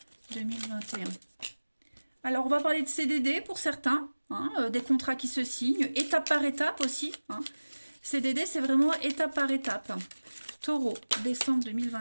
2021. Alors, on va parler de CDD pour certains. Hein, des contrats qui se signent. Étape par étape aussi. Hein. CDD, c'est vraiment étape par étape. Taureau, décembre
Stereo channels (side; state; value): both; inverted; correlation -1.00